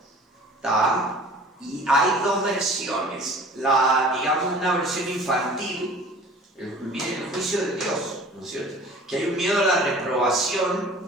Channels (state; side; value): normal; both; correlation 0.45